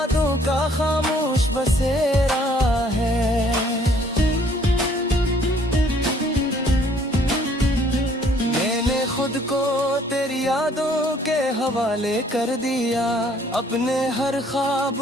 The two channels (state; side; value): normal; both; correlation 0.61